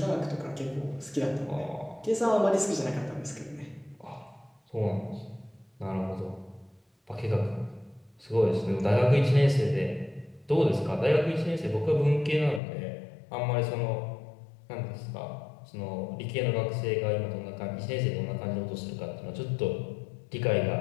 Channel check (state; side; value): drops out; right; at 12.6 s